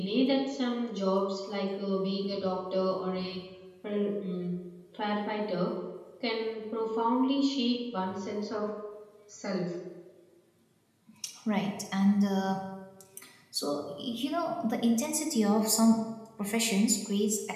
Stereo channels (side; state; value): both; identical; correlation 1.00